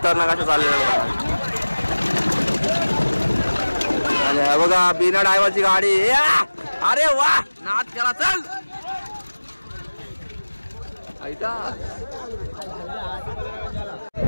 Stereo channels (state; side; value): inverted; both; correlation -1.00